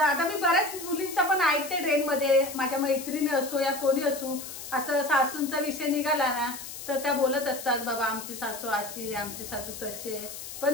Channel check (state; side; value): noise; left; hiss, 10 dB below the sound